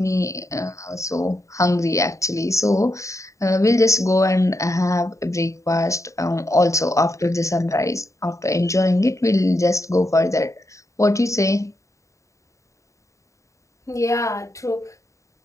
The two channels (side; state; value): right; late; 0.15 ms